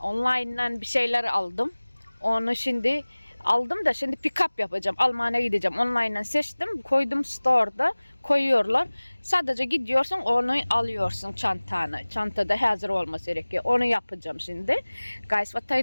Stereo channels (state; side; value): inverted; both; correlation -1.00